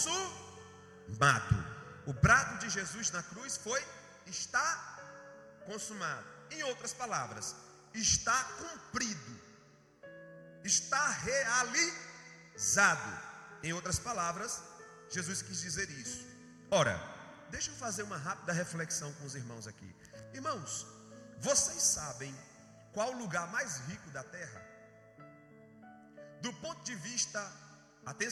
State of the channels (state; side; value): identical; both; correlation 1.00